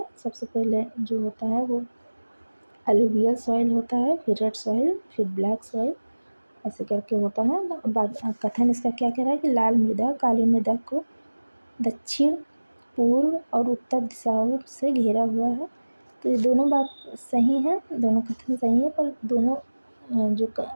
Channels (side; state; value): both; inverted; correlation -1.00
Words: सबसे पहले जो होता है वो अलुवियल सॉइल होता है, फिर रेड सॉइल, फिर ब्लैक सॉइल, ऐसे करके होता है। कथन इसका क्या कह रहा है कि लाल मृदा काली मृदा को दक्षिण, पूर्व और उत्तर दिशाओं से घेरा हुआ है। तो ये दोनों बात सही है, दोनों कथन सही है, पर दोनों जो